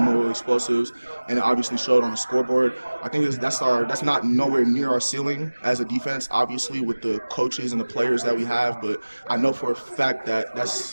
explosives, and it obviously showed on the scoreboard. I think that's not nowhere near our ceiling as a defense, obviously, with the coaches and the players that we have. But I know for a fact that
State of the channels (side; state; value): both; inverted; correlation -1.00